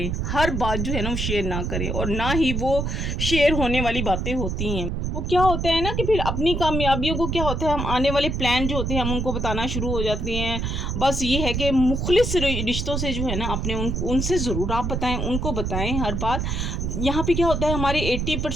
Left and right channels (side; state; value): right; noise; rumble, 1 dB below the sound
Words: हर बात जो है ना वो शेयर ना करें, और ना ही वो शेयर होने वाली बातें होती हैं। वो क्या होता है ना कि फिर अपनी कामयाबियों को क्या होता है, हम आने वाले प्लान जो होते हैं हम उनको बताना शुरू हो जाते हैं। बस ये है कि मुखलिस रिश्तों से जो है ना अपने उनसे ज़रूर आप बताएं, उनको बताएं हर बात। यहाँ पे क्या होता है, हमारे